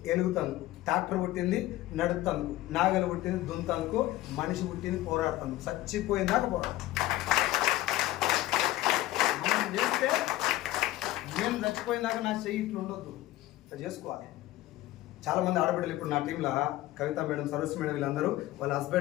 ఎలుగుతందుకు, ట్రాక్టర్ పుట్టింది నడుపుతందుకు, నాగలు పుట్టింది దున్నందుకు, మనిషి పుట్టింది పోరాడుతందుకు. చచ్చిపోయిందాక పోరాడు. మనం చేస్తే నేను చచ్చిపోయిందాక నా చెయ్యి ఇట్లా ఉండొద్దు, ఇట్లా చేసుకోవాలి. చాలామంది ఆడబిడ్డలు ఇప్పుడు నా టీంలో కవిత మేడం, సరస్సు మేడం, వీళ్ళందరూ వాళ్ళ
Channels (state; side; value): quieter; right; 16.4 dB